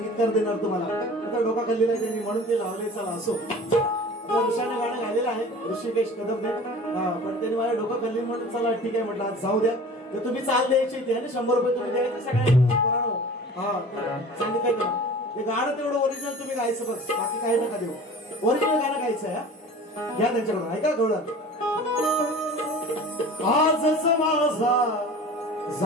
देणार तुम्हाला. आता डोका खाल्लेला आहे त्यांनी म्हणून ते लावले. चला असो, ऋषाने गाणं गायलेलं आहे ऋषिकेश कदमने, पण त्यांनी माझ्या डोकं खाल्ली म्हणून चला ठीक आहे म्हटलं आज जाऊ द्या. तर तुम्ही चाल द्यायची ते 100 रुपये तुम्ही द्यायचे सगळ्यांना. हा सांगितलं ना, ते गाणं तेवढं ओरिजिनल तुम्ही गायचं बस, बाकी काही नका देऊ. ओरिजिनल गाणं गायचं आहे. घ्या त्यांच्याकडून ऐका गवळण. आजच माझा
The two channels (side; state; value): both; normal; correlation 0.41